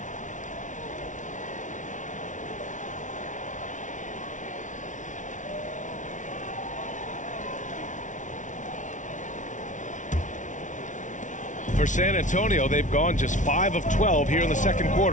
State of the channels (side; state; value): right; late; 0.37 ms